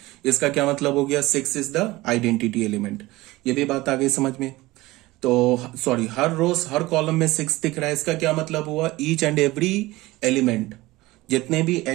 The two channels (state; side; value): quieter; left; 19.5 dB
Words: इसका क्या मतलब हो गया, 6 इज द आइडेंटिटी एलिमेंट। ये भी बात आ गई समझ में। तो सॉरी, हर रोज हर कॉलम में 6 दिख रहा है। इसका क्या मतलब हुआ, ईच एंड एवरी एलिमेंट, जितने भी